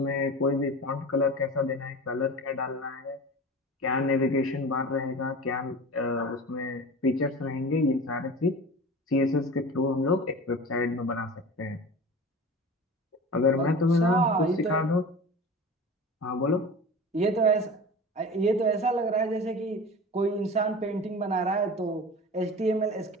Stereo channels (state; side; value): normal; both; correlation 0.34